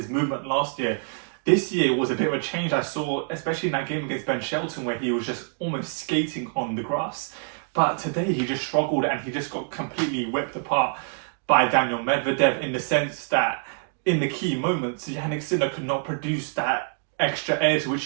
movement last year. This year was a bit of a change I saw, especially in that game against Ben Shelton, where he was just almost skating on the grass. But today he just struggled, and he just got completely whipped apart by Daniil Medvedev, in the sense that in the key moments, Jannik Sinner could not produce that extra edge which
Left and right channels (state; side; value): silent; left; 61 dB below the other